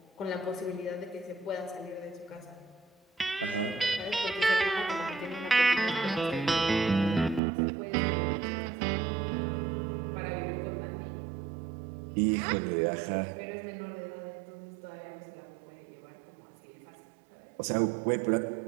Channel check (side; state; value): left; drops out; at 7.4 s